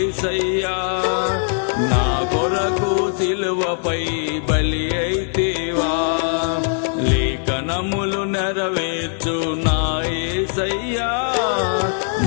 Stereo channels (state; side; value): silent; right; digital silence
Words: నా కొరకు సిలువపై బలి అయితివా. లేఖనములు నెరవేర్చు నా యేసయ్యా,